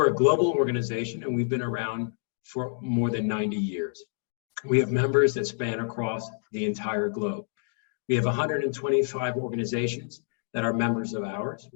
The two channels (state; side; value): silent; right; digital silence